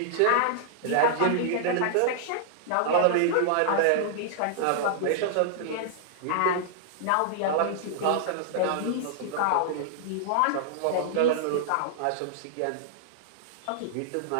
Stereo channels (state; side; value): different; both; correlation -0.01